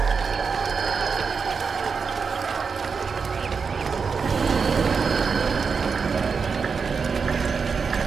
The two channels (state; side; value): quieter; left; 5.5 dB